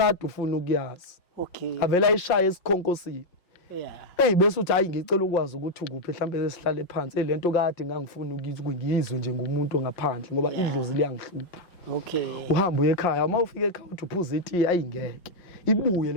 ufuna ukuyazi. Okay. Avela ayishaye esikhonkosini. Bese uthi hayi ngicela ukwazi ukuthi ukuphi mhlambe esihlale phansi lento kade ngangifuna ukuyizwe nje ngumuntu ngaphandle ngoba idlozi liyangihlupha. Okay. Uhamba uye ekhaya uma ufika ekhaya uthi uphuza iti ayingeke ibuye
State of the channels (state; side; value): late; right; 5.5 ms